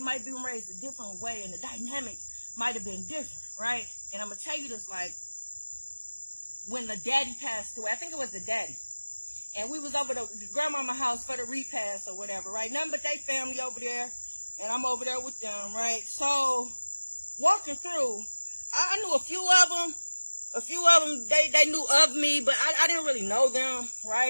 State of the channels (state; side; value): inverted; both; correlation -1.00